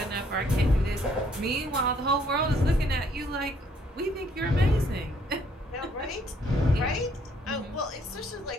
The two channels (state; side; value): normal; both; correlation 0.65